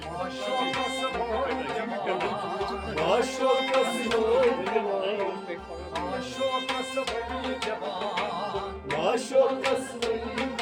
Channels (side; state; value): both; identical; correlation 1.00